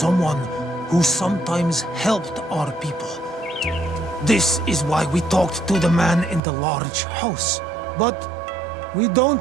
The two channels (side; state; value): left; drops out; at 6.4 s